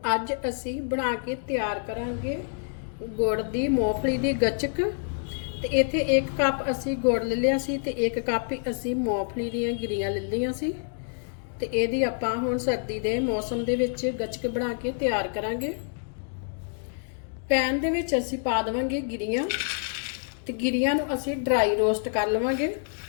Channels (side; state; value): right; silent; digital silence